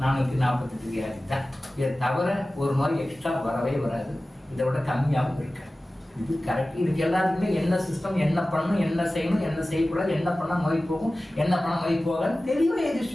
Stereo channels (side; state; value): both; normal; correlation 0.96